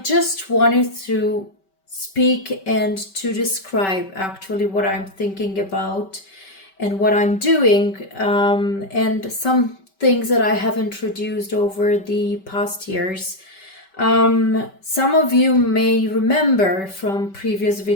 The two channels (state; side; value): late; right; 5.2 ms